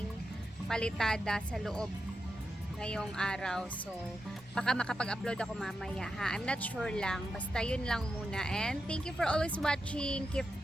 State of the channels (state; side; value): normal; both; correlation 0.88